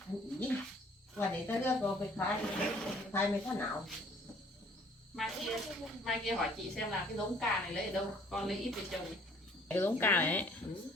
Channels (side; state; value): both; normal; correlation 0.57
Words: và để tới đưa cô phải khai mấy tháng nào Mai kia hỏi chị xem là cái giống cà này lấy ở đâu, con lấy ít về trồng. Cái giống cà này ấy,